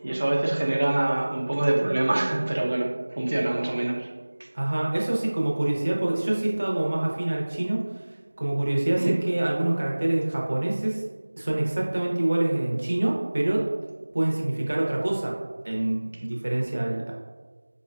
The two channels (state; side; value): inverted; both; correlation -1.00